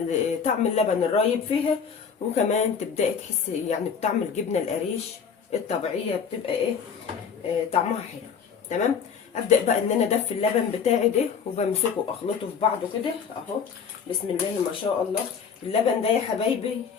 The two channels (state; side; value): quieter; right; 6.6 dB